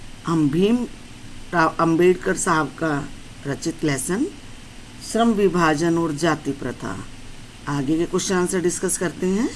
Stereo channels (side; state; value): both; identical; correlation 1.00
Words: हम भीम राव अंबेडकर साहब का रचित लेसन श्रम विभाजन और जाति प्रथा आगे के क्वेश्चन आंसर डिस्कस करते हैं।